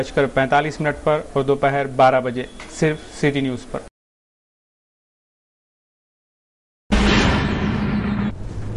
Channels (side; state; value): both; identical; correlation 1.00